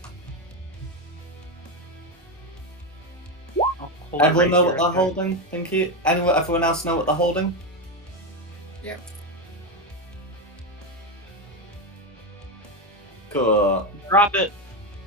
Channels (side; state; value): both; normal; correlation 0.11